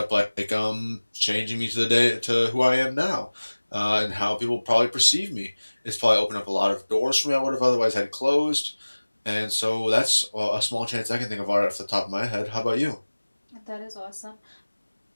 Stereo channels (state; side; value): inverted; both; correlation -1.00